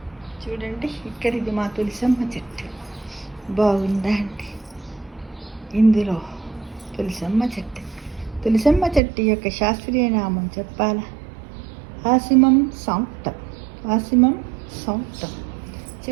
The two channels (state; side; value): drops out; left; at 9.0 s